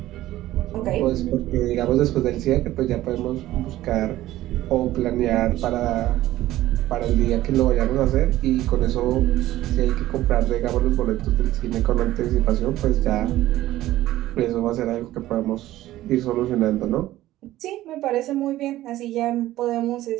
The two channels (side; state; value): left; quieter; 15.2 dB